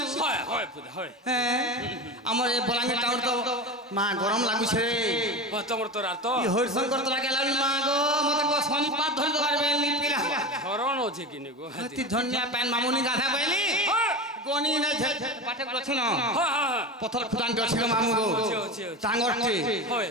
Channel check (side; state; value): both; normal; correlation 0.25